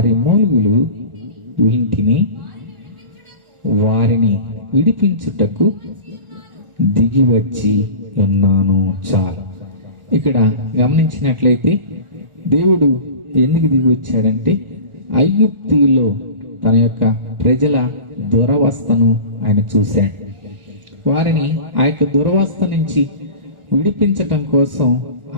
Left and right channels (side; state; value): left; late; 1.4 ms